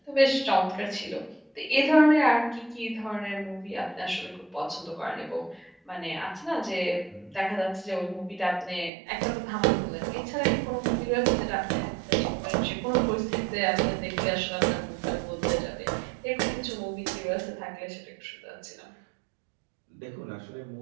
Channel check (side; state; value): left; drops out; at 8.9 s